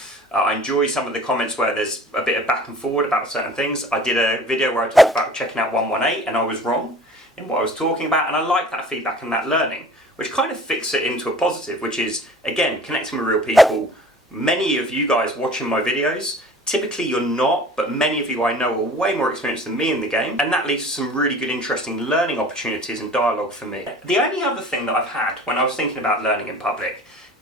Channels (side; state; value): both; normal; correlation 0.45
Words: I enjoy some of the comments where there's a bit of back and forward about certain things. I did a video where I talked about checking out 118 and I was wrong in what I was talking about, and I like that feedback and that learning, which kind of fixes it into a positive, which is, again, connecting with real people. Many of you guys watching my videos, typically you're not, but many of you I know are way more experienced than me in the game, and that leads to some really good, interesting learning opportunities and dialogue for me. The only other thing that I've had when I was thinking about learning in public